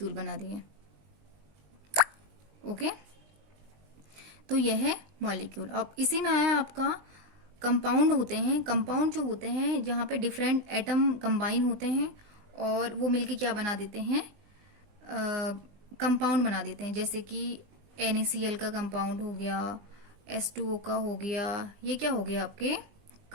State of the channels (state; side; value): late; left; 20 ms